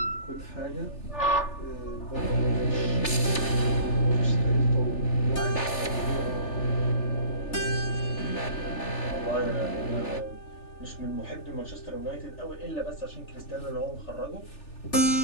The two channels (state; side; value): late; right; 3.4 ms